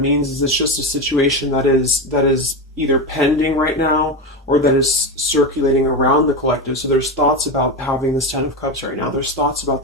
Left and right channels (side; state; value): both; normal; correlation 0.17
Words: is it's just a situation that is either pending right now or that is circulating around the collective. So there's thoughts about having this Ten of Cups right now. There's thoughts about